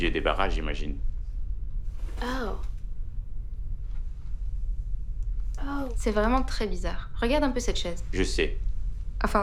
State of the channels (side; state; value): both; identical; correlation 1.00